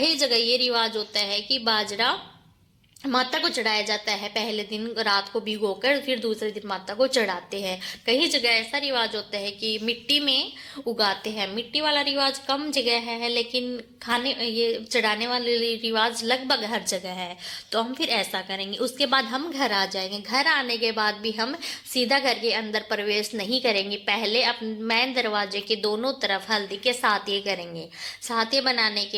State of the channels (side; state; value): both; identical; correlation 1.00